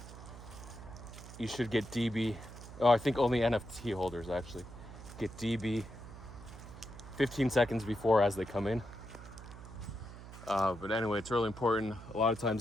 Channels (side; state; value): right; noise; hum, 14 dB below the sound